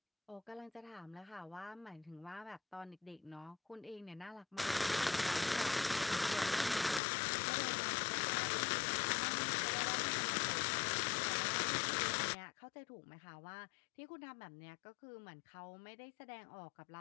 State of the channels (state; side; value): drops out; right; at 7.0 s